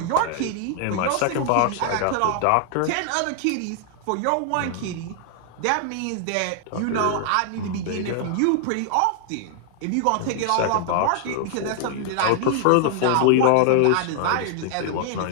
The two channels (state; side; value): different; both; correlation 0.00